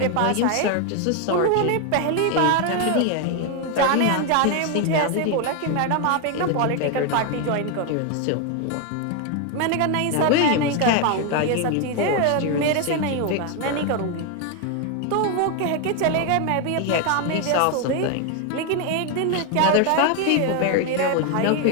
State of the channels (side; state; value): both; different; correlation 0.01